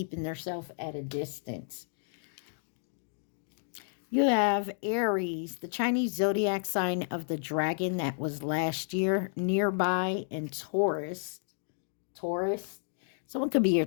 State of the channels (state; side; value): silent; right; digital silence